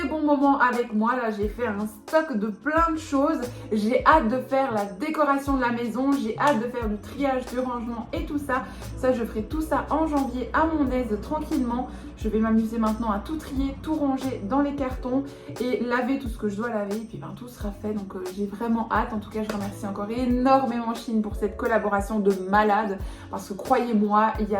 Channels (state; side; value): identical; both; correlation 1.00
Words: bon moment avec moi. Là, j'ai fait un stock de plein de choses. J'ai hâte de faire la décoration de la maison. J'ai hâte de faire du triage, du rangement et tout ça. Ça, je ferai tout ça en janvier à mon aise, tranquillement. Je vais m'amuser maintenant à tout trier, tout ranger dans les cartons et laver tout ce que je dois laver. Et puis, ben, tout sera fait. Donc, j'ai vraiment hâte. En tout cas, je remercie encore énormément Shein pour cette collaboration de malade. Parce que croyez-moi, il y